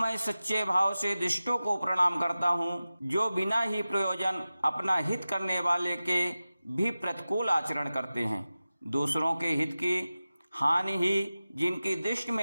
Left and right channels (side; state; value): both; inverted; correlation -0.95